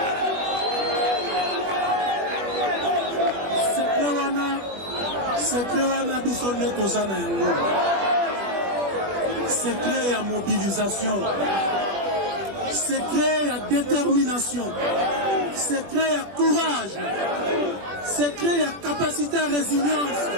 Secret wana biso nde toza na yango. Secret ya mobilisation, secret ya détermination, secret ya courage, secret ya capacité à résilience,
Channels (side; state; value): left; late; 21 ms